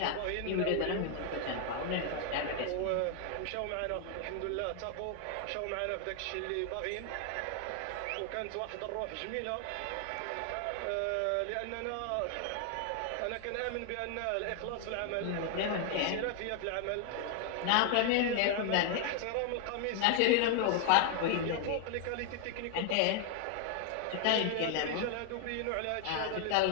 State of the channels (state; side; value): different; both; correlation 0.00